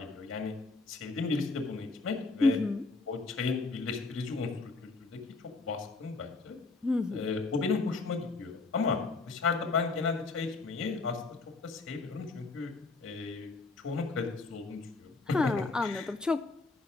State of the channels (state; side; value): quieter; right; 3.7 dB